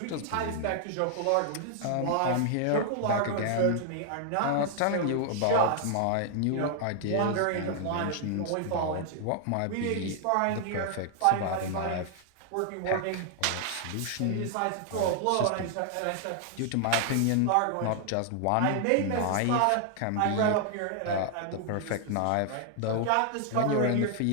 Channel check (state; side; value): different; both; correlation 0.00